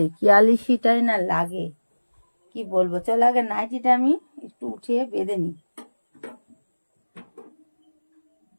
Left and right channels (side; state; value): both; inverted; correlation -1.00